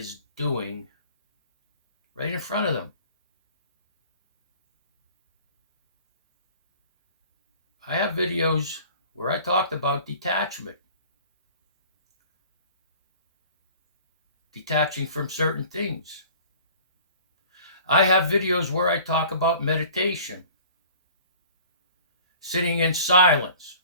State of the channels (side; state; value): both; inverted; correlation -0.47